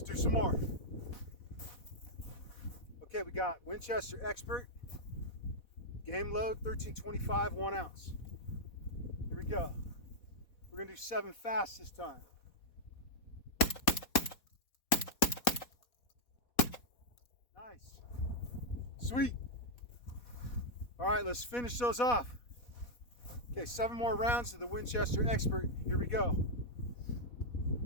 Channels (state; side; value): late; right; 4.2 ms